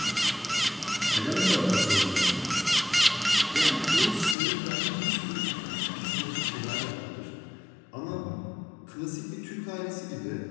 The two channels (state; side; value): drops out; right; at 4.4 s